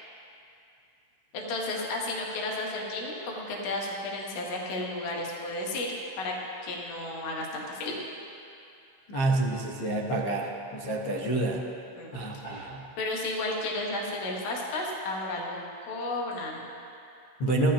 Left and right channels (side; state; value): right; late; 16 ms